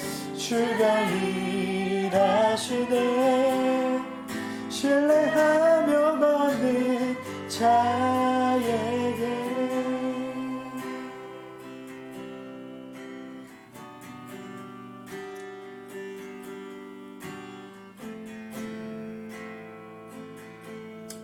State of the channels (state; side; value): identical; both; correlation 1.00